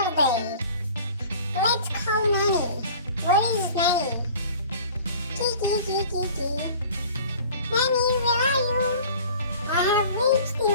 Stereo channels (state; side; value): inverted; both; correlation -0.46